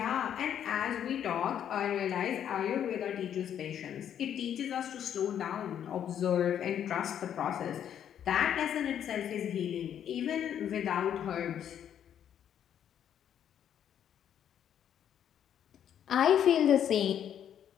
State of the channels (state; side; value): quieter; right; 9.6 dB